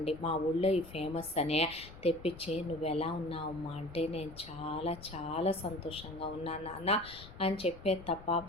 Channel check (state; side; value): noise; left; rumble, 17 dB below the sound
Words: మా ఊళ్ళో ఈ ఫేమస్ అనే తెప్పించి, నువ్వు ఎలా ఉన్నావమ్మా అంటే, నేను చాలా చాలా సంతోషంగా ఉన్నాను నాన్న అని చెప్పేది తప్ప